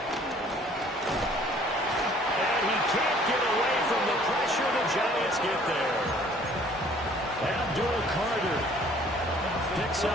Can't get away from the pressure. The Giants get there. Abdul Carter picks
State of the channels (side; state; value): both; normal; correlation 0.56